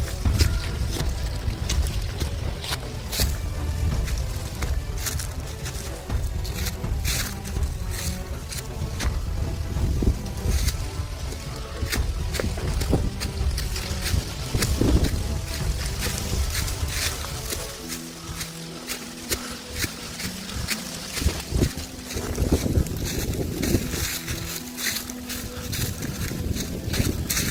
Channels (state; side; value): identical; both; correlation 1.00